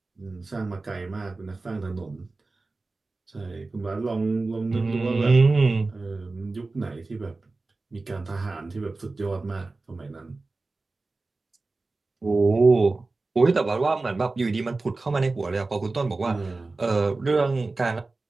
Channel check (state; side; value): quieter; left; 3.5 dB